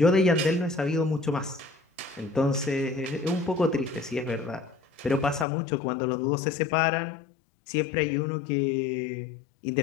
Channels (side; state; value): right; drops out; at 5.5 s